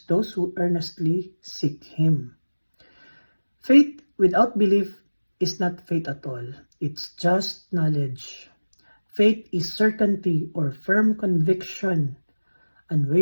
those who earnestly seek Him." Faith without belief is not faith at all. It's just knowledge. Faith is certainty or firm conviction,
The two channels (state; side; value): inverted; both; correlation -1.00